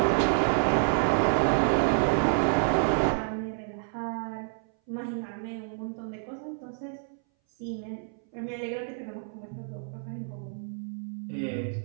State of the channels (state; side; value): silent; left; 59 dB below the other